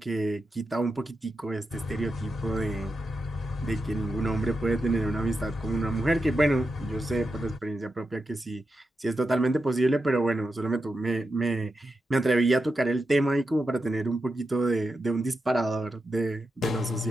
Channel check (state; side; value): normal; both; correlation 0.88